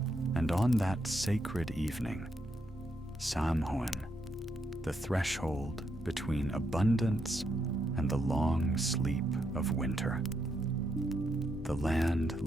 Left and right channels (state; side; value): normal; both; correlation 0.79